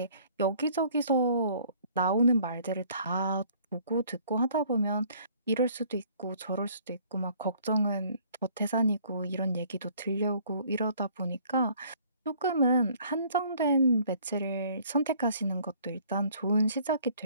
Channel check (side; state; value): both; inverted; correlation -0.58